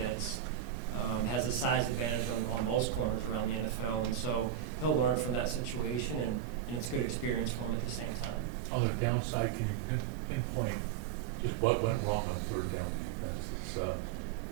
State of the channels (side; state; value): left; quieter; 10.1 dB